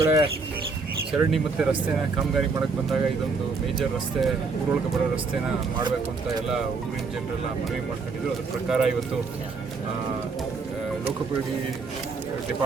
ಚರಂಡಿ ಮತ್ತು ರಸ್ತೆನ ಕಾಮಗಾರಿ ಮಾಡೋಕ್ಕೆ ಬಂದಾಗ ಇದೊಂದು ಮೇಜರ್ ರಸ್ತೆ, ಊರೊಳಗೆ ಬರೋ ರಸ್ತೆನ ಮಾಡಬೇಕು ಅಂತ ಎಲ್ಲ ಊರಿನ ಜನರೆಲ್ಲ ಮನವಿ ಮಾಡ್ಕೊಂಡಿದ್ರು. ಅದ್ರ ಪ್ರಕಾರ ಇವತ್ತು ಲೋಕೋಪಯೋಗಿ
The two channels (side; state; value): left; quieter; 4.4 dB